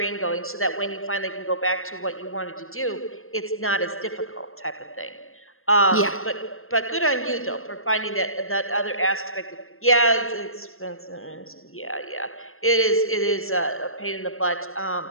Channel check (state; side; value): late; right; 0.61 ms